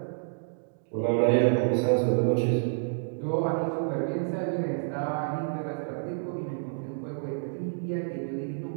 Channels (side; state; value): left; silent; digital silence